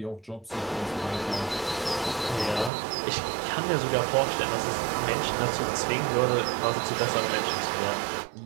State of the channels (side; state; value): left; drops out; at 2.7 s